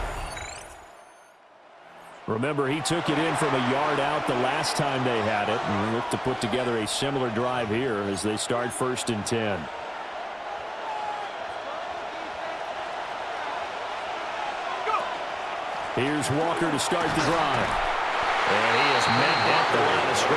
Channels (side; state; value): both; identical; correlation 1.00